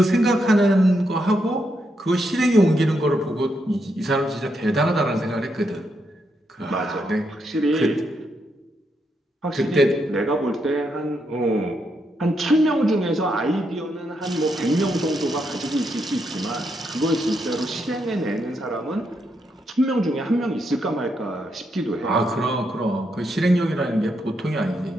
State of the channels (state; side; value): normal; both; correlation 0.80